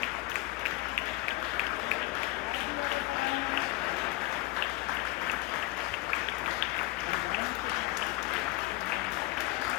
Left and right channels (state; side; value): quieter; right; 19.9 dB